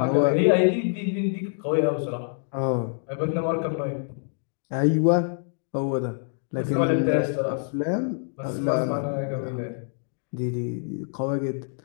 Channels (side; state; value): right; silent; digital silence